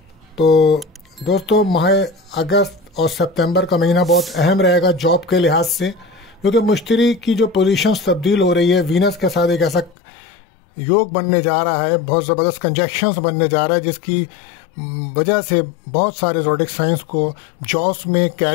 तो दोस्तों, माह अगस्त और सितंबर का महीना बहुत अहम रहेगा जॉब के लिहाज से, क्योंकि मुश्तरी की जो पोजीशंस तब्दील हो रही है, वीनस के साथ एक ऐसा योग बनने जा रहा है, बहुत ज़बरदस्त कंजक्शंस बनने जा रहा है, जिसकी वजह से बहुत सारे ज़ोडिक साइंस को जॉब्स में,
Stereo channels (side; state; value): right; drops out; at 10.0 s